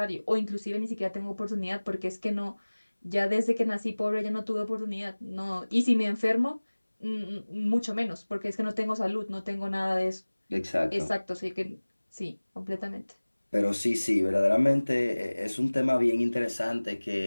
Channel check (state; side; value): inverted; both; correlation -1.00